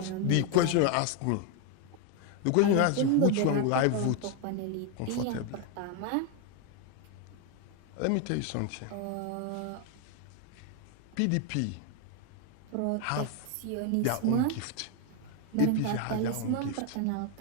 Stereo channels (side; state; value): both; different; correlation 0.01